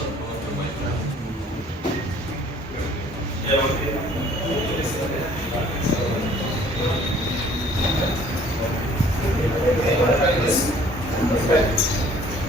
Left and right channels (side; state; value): both; normal; correlation 0.56